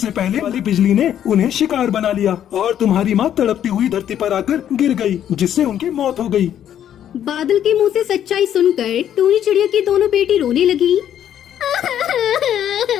पहले वाली बिजली ने उन्हें शिकार बना लिया और तुम्हारी माँ तड़पती हुई धरती पर आकर गिर गई, जिससे उनकी मौत हो गई। बादल के मुंह से सच्चाई सुनकर टूनी चिड़िया की दोनों बेटी रोने लगी।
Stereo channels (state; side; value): quieter; right; 10.3 dB